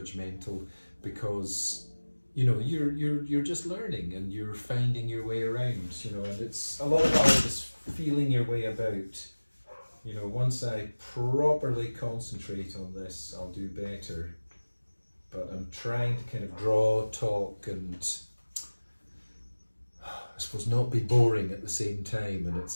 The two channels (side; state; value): both; inverted; correlation -1.00